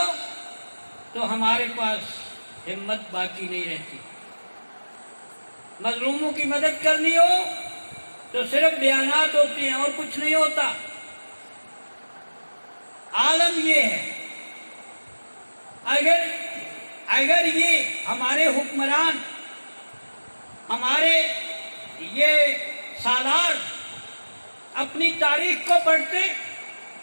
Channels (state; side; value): inverted; both; correlation -1.00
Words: تو ہمارے پاس ہمت باقی نہیں رہتی، مظلوموں کی مدد کرنی ہو تو صرف بیانات ہوتے ہیں اور کچھ نہیں ہوتا۔ عالم یہ ہے، اگر اگر یہ ہمارے حکمران، ہمارے یہ سالار اپنی تاریخ کو پڑھتے